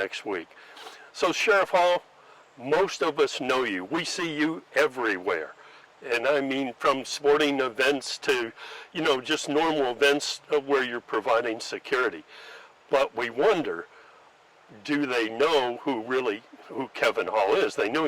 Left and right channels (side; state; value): both; identical; correlation 1.00